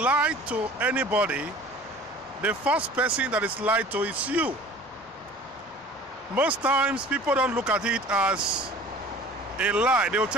to anybody, the first person that is lied to is you. Most times, people don't look at it as a lie. They will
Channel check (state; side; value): normal; both; correlation 0.45